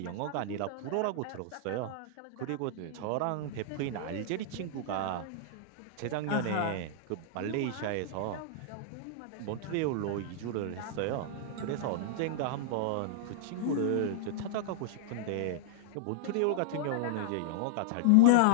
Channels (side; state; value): both; different; correlation -0.01